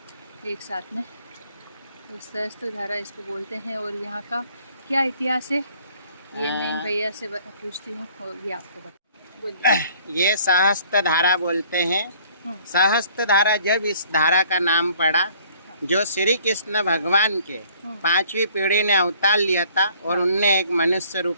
एक साथ में, तो सहस्त्रधारा इसको बोलते हैं। और यहाँ का क्या इतिहास है ये मैं इन भैया से पूछती हूँ और ये आपको बता। बोलिए। ये सहस्त्र धारा बोलते हैं। सहस्त्र धारा जब इस धारा का नाम पड़ा, जो श्री कृष्ण भगवान के 5वीं पीढ़ी ने अवतार लिया था और उनने एक मनुष्य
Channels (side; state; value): both; inverted; correlation -0.57